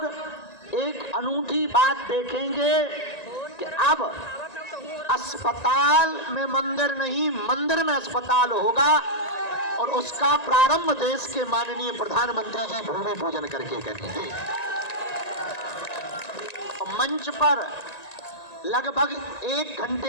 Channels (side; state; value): right; late; 1.9 ms